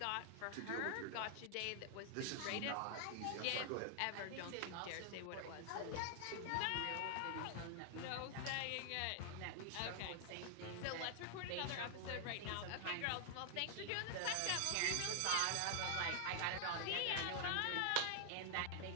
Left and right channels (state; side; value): different; both; correlation 0.00